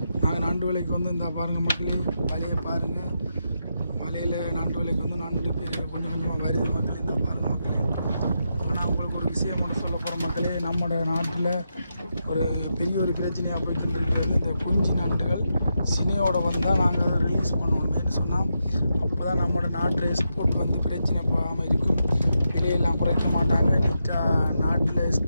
நாங்கள் நண்டு விலைக்கு வந்து இந்த பாருங்கள் மக்களே, வலையை பாருங்கள். வலையில் நண்டு விலைக்கு வந்து நண்டு கொஞ்சம் கொஞ்சமாக வருது மக்களே. இந்த பாருங்கள் மக்களே. ஆனால் உங்களுக்கு ஒரு விஷயம் மட்டும் சொல்ல போகிற மக்களே, நம்மளோட நாட்டில் ஒரு பெரிய ஒரு பிரச்சனையாக போயிட்டு இருக்கிறது இந்த குஞ்சு நண்டுகள் சினையோட வந்தால் நாங்கள் அதை ரிலீஸ் பண்ணணுமேனு சொன்னால் அப்போ தான் நம்மளோட நாட்டில் எக்ஸ்போர்ட் வந்து பிரச்சனை போகாமல் இருக்கும். விலையெல்லாம் குறைக்க மாட்டாங்க. நீட்டாக நாட்டில்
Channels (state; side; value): inverted; both; correlation -0.85